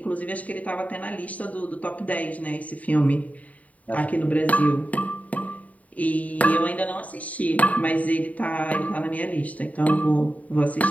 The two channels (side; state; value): right; late; 0.070 ms